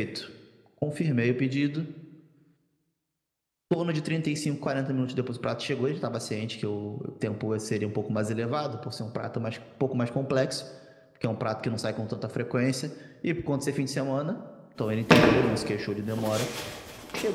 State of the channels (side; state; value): both; identical; correlation 1.00